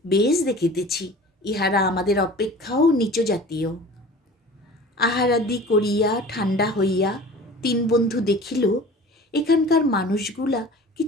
বেশ দেখিতেছি, ইহারা আমাদের অপেক্ষাও নিচ জাতীয়। আহারাদি করিয়া ঠান্ডা হইয়া 3 বন্ধু দেখিল এখানকার মানুষগুলা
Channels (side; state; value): both; normal; correlation 0.41